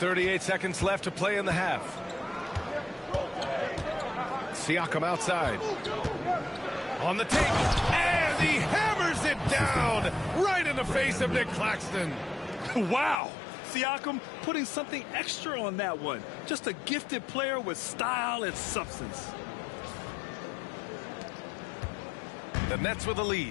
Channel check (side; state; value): right; drops out; at 13.2 s